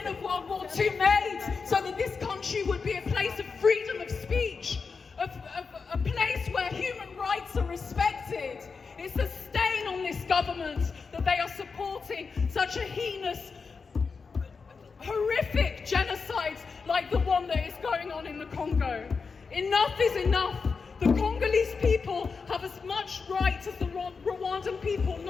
of World War II made so that this country would be a place of freedom of speech, a place where human rights are respected. It's a stain on this government that they are supporting such a heinous, horrific genocide like the one that is going on in the Congo. Enough is enough. The Congolese people have as much right as the Rwandan people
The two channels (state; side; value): quieter; right; 5.0 dB